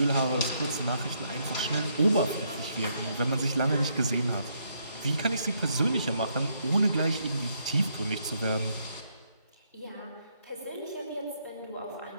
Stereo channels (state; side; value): inverted; both; correlation -0.74